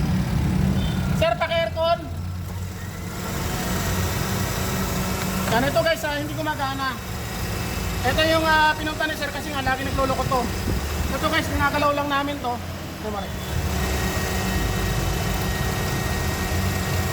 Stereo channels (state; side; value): identical; both; correlation 1.00